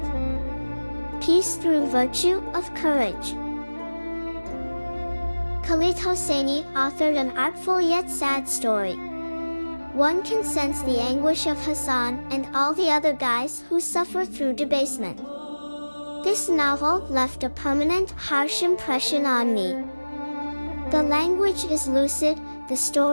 Peace through virtue of courage. Khaled Hosseini authored an artful yet sad story. One can sense the anguish of Hassan and all the other guys who suffer through debasement. This novel left a permanent, harsh impression on me. The language is lucid, the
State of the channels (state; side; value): inverted; both; correlation -1.00